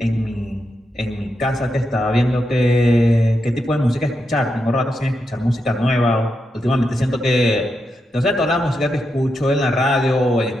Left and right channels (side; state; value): both; normal; correlation 0.85